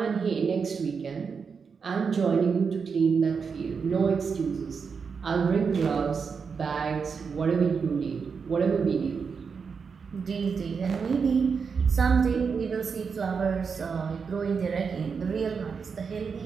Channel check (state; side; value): quieter; left; 5.7 dB